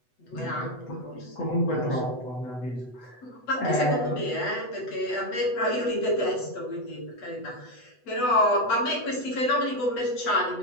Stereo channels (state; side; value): late; right; 8.0 ms